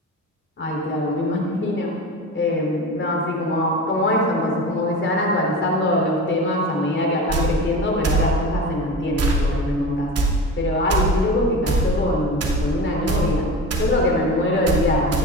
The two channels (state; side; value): normal; both; correlation 0.30